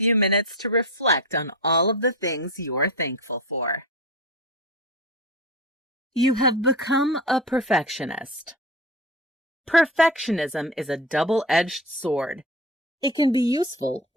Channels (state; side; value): normal; both; correlation 0.27